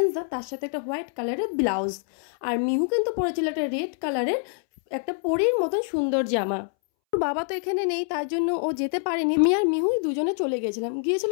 তার সাথে একটা হোয়াইট কালারের ব্লাউজ। আর মিহু কিন্তু পরেছিল একটা রেড কালারের একটা পরীর মতন সুন্দর জামা। ওর বাবা তো এখানে নেই, তার জন্য ও যেতে পারেনি। আমি আর মিহুই দুজনে চলে গিয়েছিলাম। গিয়েছিল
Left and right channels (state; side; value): silent; right; 61 dB below the other